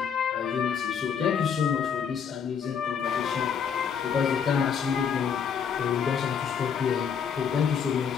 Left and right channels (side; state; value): right; quieter; 7.2 dB